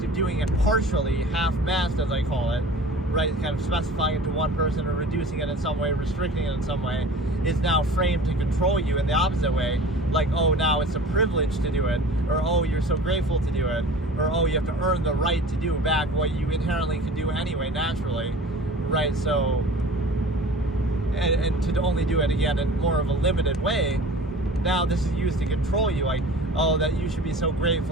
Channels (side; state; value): both; normal; correlation 0.41